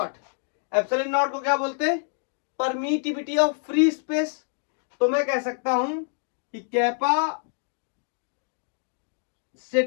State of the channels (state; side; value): silent; right; digital silence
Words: Epsilon naught को क्या बोलते हैं, परमिटिविटी ऑफ फ्री स्पेस। तो मैं कह सकता हूं कि capacitance